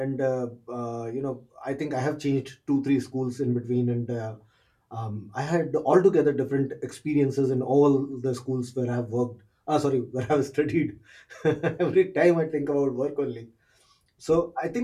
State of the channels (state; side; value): identical; both; correlation 1.00